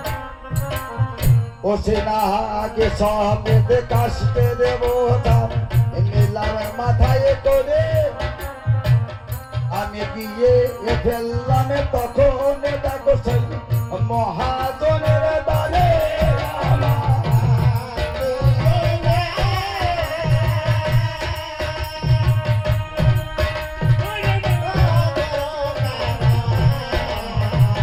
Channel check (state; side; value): identical; both; correlation 1.00